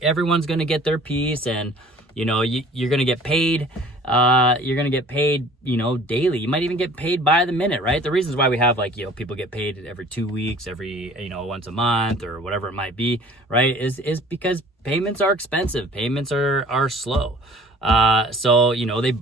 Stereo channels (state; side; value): normal; both; correlation 0.49